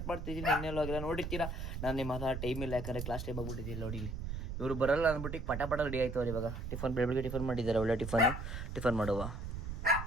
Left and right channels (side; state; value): right; noise; rumble, 5 dB below the sound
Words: ಮಾಡ್ತಿದ್ದೀನಿ. ಇನ್ನೆಲ್ಲೂ ಆಗಿಲ್ಲ ನೋಡಿರ್ತೀರಾ. ನಾನು ನಿಮ್ಮ ಹತ್ರ ಟೈಮ್ ಇಲ್ಲ, ಯಾಕಂದರೆ ಕ್ಲಾಸ್ ಟೈಮ್ ಆಗ್ಬಿಟ್ಟಿದ್ದೀನಿ. ನೋಡಿ ಇವರು ಬರಲ್ಲ ಅಂದ್ಬಿಟ್ಟು ಪಟ ರೆಡಿ ಆಯ್ತು ಅವ್ರು. ಇವಾಗ ಟಿಫನ್ ಬೆಳಗ್ಗೆ ಟಿಫನ್ ಮಾಡಿದ್ದಾರೆ, ಒಳ್ಳೆ ಟಿಫನ್ ಮಾಡುವ.